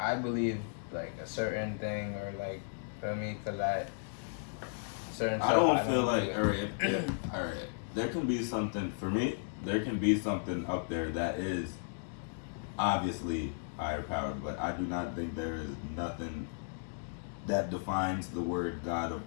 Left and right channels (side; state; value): right; silent; digital silence